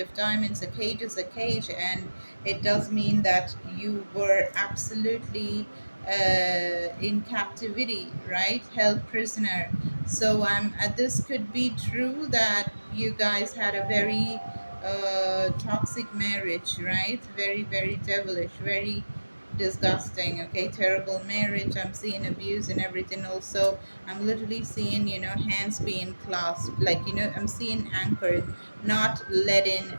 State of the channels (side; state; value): both; inverted; correlation -1.00